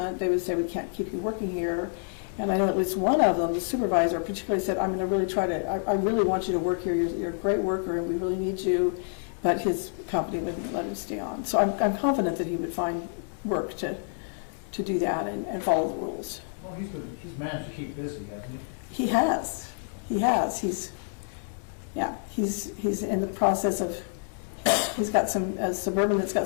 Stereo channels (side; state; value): right; silent; digital silence